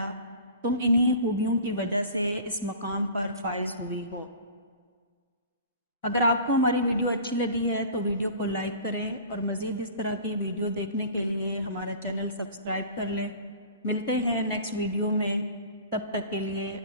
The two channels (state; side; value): inverted; both; correlation -0.41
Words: تم انہی خوبیوں کی وجہ سے اس مقام پر فائز ہوئی ہو۔ اگر آپ کو ہماری ویڈیو اچھی لگی ہے تو ویڈیو کو لائک کریں اور مزید اس طرح کی ویڈیو دیکھنے کے لیے ہمارا چینل سبسکرائب کر لیں۔ ملتے ہیں نیکسٹ ویڈیو میں، تب تک کے لیے